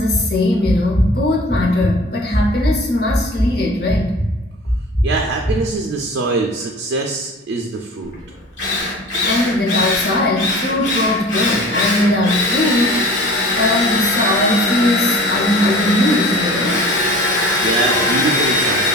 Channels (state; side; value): normal; both; correlation 0.42